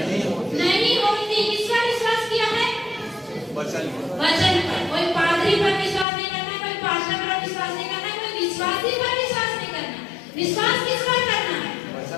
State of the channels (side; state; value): right; drops out; at 6.1 s